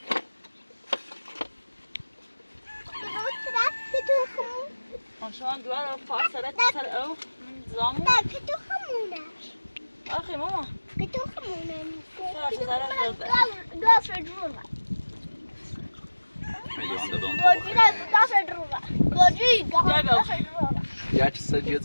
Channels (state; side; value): inverted; both; correlation -1.00